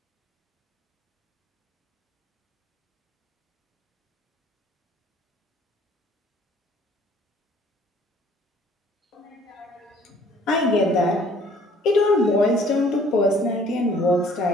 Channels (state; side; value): normal; both; correlation 0.57